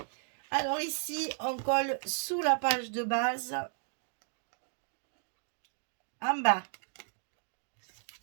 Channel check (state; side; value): silent; left; 55 dB below the other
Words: Alors ici, on colle sous la page de base, en bas,